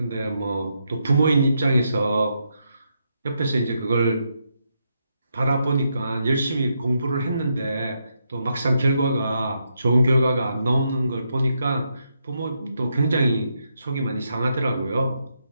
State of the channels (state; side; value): inverted; both; correlation -0.81